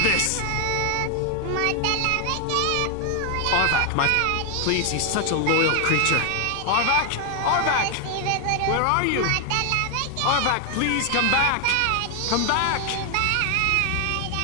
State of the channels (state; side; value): different; both; correlation 0.00